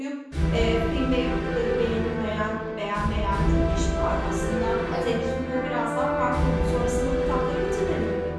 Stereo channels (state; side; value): identical; both; correlation 1.00